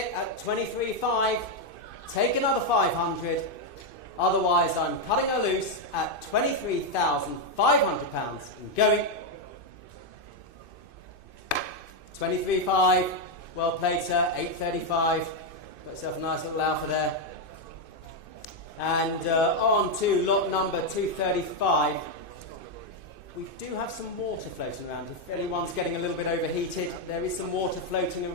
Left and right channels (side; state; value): right; late; 2.5 ms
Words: at 23.5. Take another 500. Otherwise, I'm cutting her loose at £23,500 and going. 23.5. Well played, sir. 8.35. Got yourself a nice little alpha there. And on to lot number 235. We do have some water floating around. If anyone's getting a little bit overheated, there is some water floating